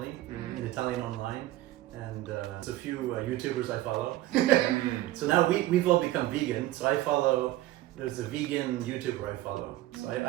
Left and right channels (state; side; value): quieter; left; 15.9 dB